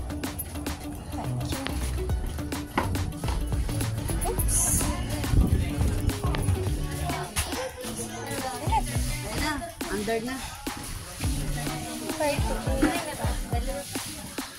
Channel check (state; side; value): identical; both; correlation 1.00